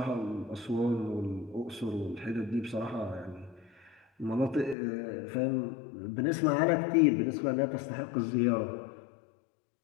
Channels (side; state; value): right; drops out; at 4.8 s